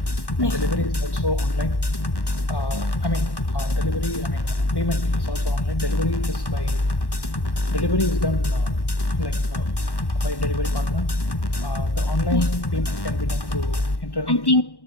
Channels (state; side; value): late; right; 1.1 ms